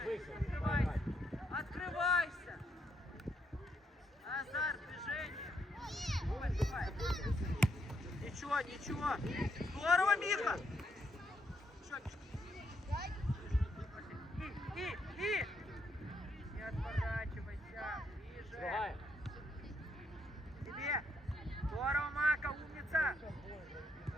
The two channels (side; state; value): both; normal; correlation 0.76